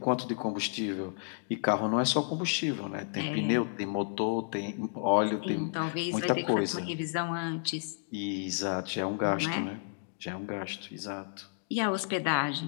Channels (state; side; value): silent; right; digital silence